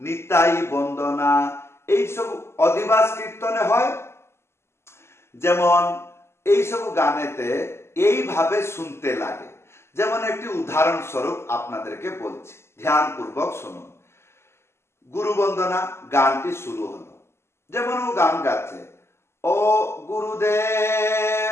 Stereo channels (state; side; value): late; right; 0.12 ms